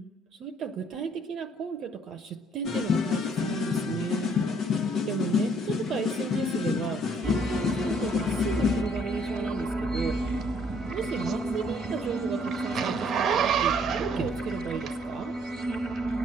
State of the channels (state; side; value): normal; both; correlation 0.64